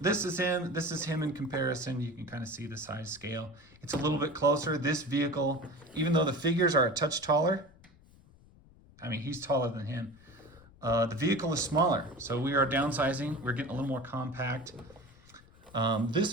this is him in comparison. You can kind of see the size scale. It's a little bit closer. This vehicle, even though the figures are a touch taller, I mean, he's taller than him, the vehicle is smaller. So we are downsizing. We're getting a little more compact. This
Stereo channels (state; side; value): noise; left; rumble, 25 dB below the sound